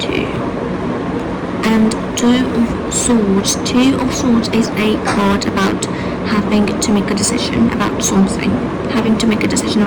And Two of Swords. Two of Swords is a card about having to make a decision about something. Having to make a decision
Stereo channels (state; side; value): identical; both; correlation 1.00